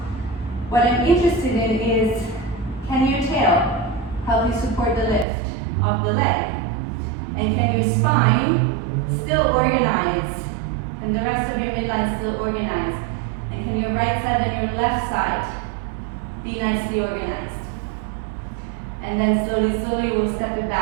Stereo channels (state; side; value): drops out; left; at 5.2 s